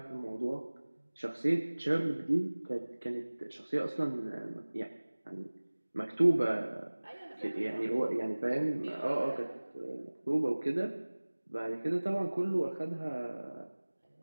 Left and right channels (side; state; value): both; inverted; correlation -1.00